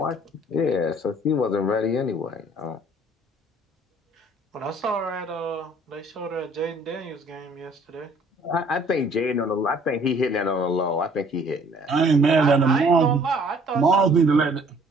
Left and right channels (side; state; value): both; normal; correlation 0.57